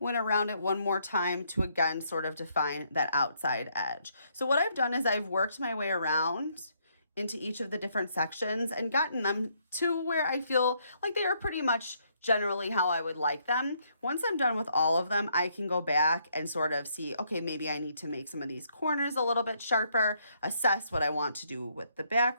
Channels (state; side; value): inverted; both; correlation -0.72